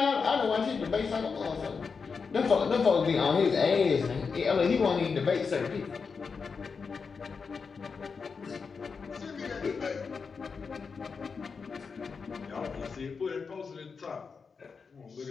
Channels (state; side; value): quieter; right; 5.3 dB